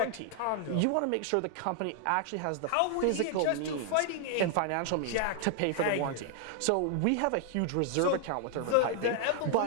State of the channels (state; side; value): different; both; correlation 0.00